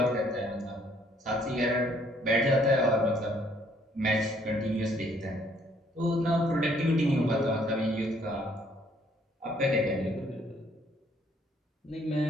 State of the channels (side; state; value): both; normal; correlation 0.64